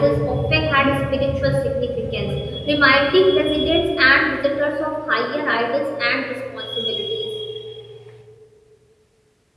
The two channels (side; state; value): both; identical; correlation 1.00